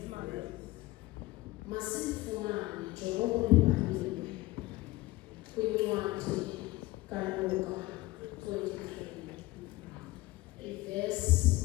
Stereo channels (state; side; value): quieter; right; 19.4 dB